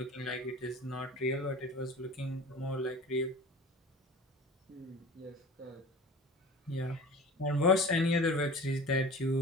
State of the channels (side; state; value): both; normal; correlation 0.39